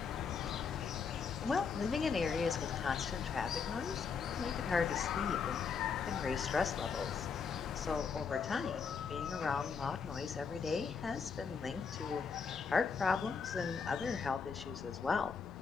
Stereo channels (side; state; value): right; quieter; 5.8 dB